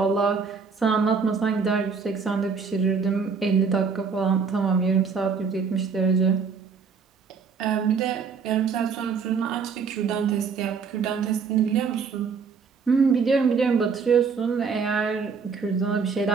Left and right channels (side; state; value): left; quieter; 5.5 dB